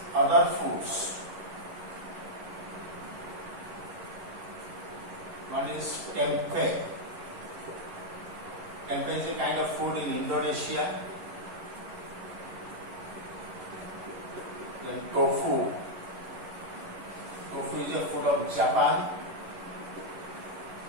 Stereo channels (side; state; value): left; late; 11 ms